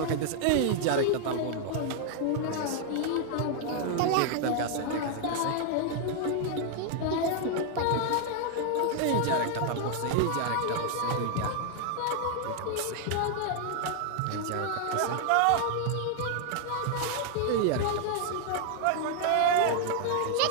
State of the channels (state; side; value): different; both; correlation 0.00